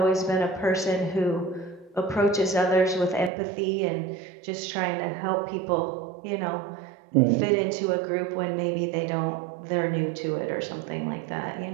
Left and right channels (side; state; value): left; drops out; at 3.3 s